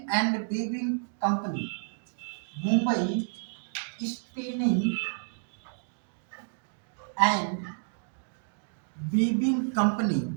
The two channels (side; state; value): left; silent; digital silence